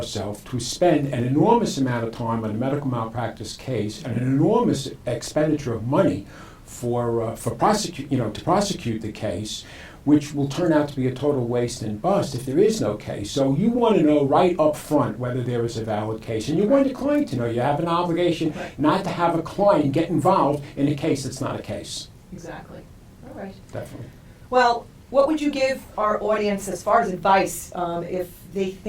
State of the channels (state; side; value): identical; both; correlation 1.00